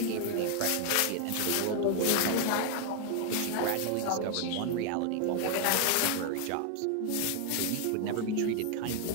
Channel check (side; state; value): both; different; correlation 0.00